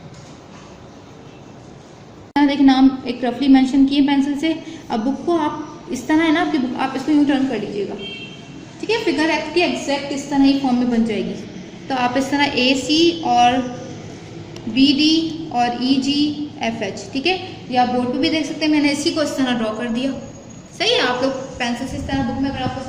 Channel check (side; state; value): both; identical; correlation 1.00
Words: देखिए नाम एक रफली मेंशन किए पेंसिल से। अब बुक को आप इस तरह है ना आपकी बुक, आप इसको यूं टर्न कर लीजिएगा, ठीक है। फिगर एक्ट की एग्जैक्ट इस तरह ही फॉर्म में बन जाएगी। तो आप इस तरह ए सी और बी डी और ई जी एफ एच, ठीक है। या आप बोर्ड पे भी देख सकते हैं, मैंने इसी को इस तरह ड्रॉ कर दिया, सही है। आप लोग पेंसिल से इस तरह बुक में, अगर आपको